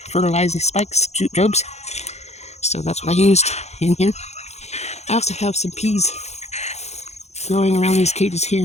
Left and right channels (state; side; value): late; right; 0.32 ms